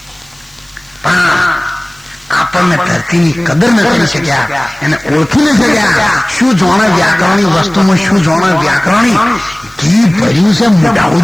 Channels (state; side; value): noise; right; hiss, 28 dB below the sound